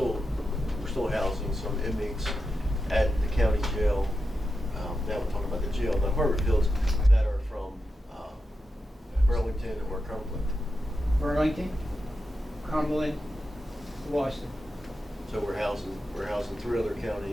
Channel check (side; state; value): both; normal; correlation 0.89